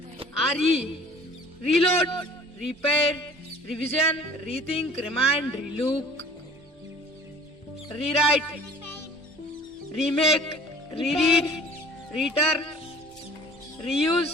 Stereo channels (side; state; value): both; normal; correlation 0.48